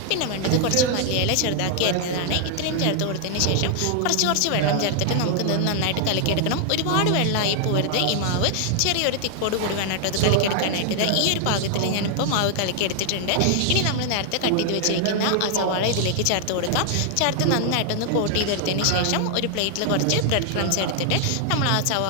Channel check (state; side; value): different; both; correlation 0.00